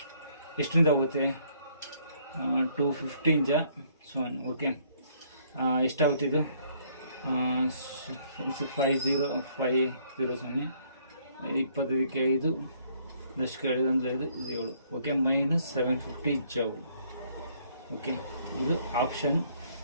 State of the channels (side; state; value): both; inverted; correlation -0.65